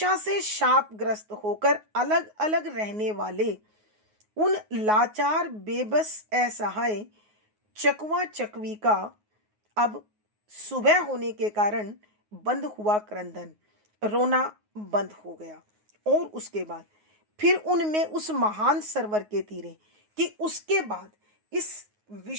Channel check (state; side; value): late; left; 9.5 ms